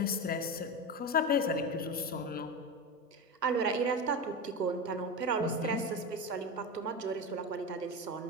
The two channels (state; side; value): normal; both; correlation 0.20